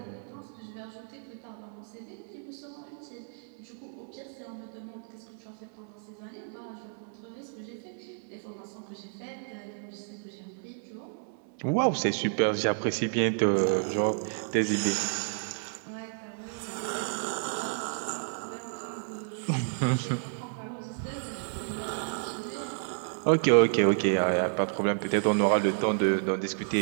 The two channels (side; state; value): left; silent; 57 dB below the other